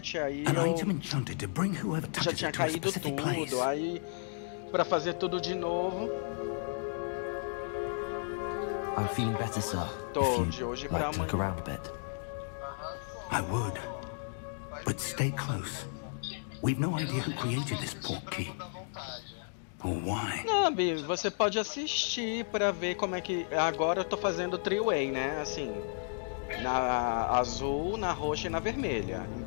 aí An item eu enchanted to bring whoever já touches tinha it to a caído specific place. tudo, aí pra fazer tudo de novo, I'm feeling better, sir. Tô, If de you'd hoje pra like to look amanhã. around a bit. I would. But stay close. We've no idea who created this portkey. Or why. Não, Bi, você pode assistir pra ver como é que... Agora eu tô fazendo three-way, né? Assim, na azul, na roxa e na vermelha.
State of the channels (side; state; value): right; silent; digital silence